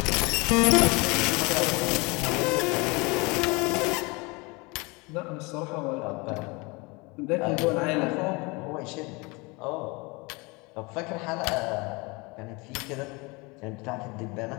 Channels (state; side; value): quieter; right; 26.7 dB